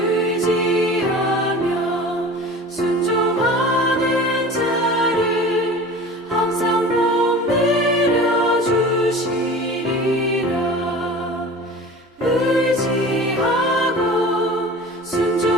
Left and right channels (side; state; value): both; normal; correlation 0.38